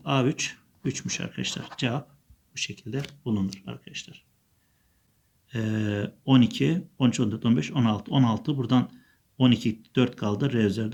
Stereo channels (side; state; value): both; identical; correlation 1.00